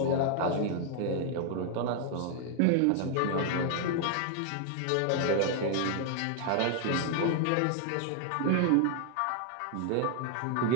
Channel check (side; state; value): both; different; correlation 0.00